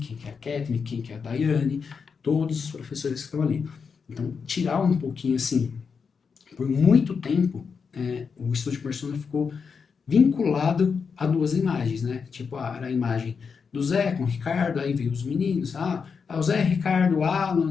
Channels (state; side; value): quieter; right; 5.8 dB